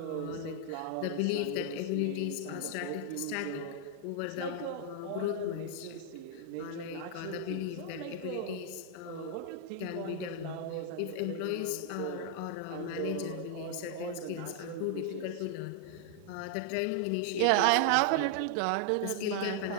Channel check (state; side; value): different; both; correlation 0.00